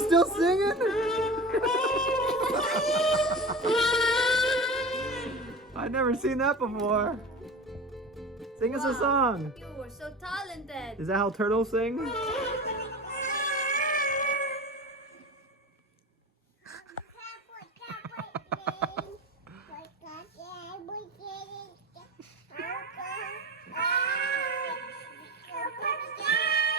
singing? I've never seen that before. Sing us a Wow. song. You were so talented. Is that how turtles sing?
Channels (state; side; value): normal; both; correlation 0.31